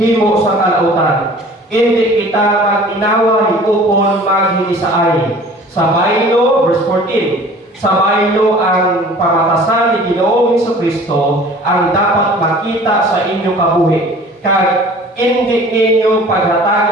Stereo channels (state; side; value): normal; both; correlation 0.47